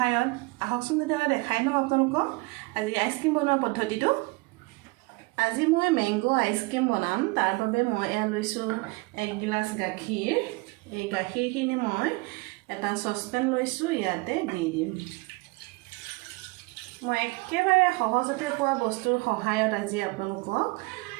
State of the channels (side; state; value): left; quieter; 25.1 dB